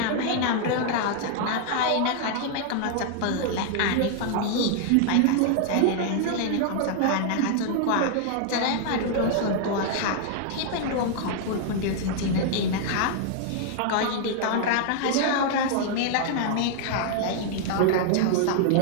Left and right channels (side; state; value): both; different; correlation 0.00